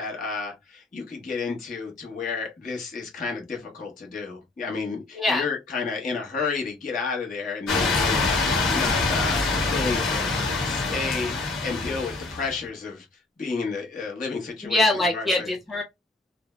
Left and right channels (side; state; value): right; quieter; 3.2 dB